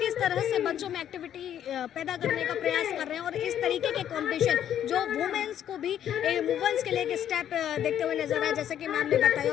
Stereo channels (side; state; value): right; quieter; 10.3 dB